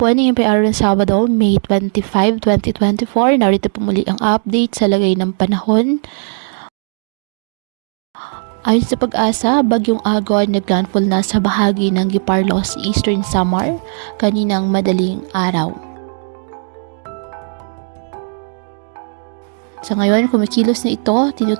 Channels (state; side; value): silent; left; 61 dB below the other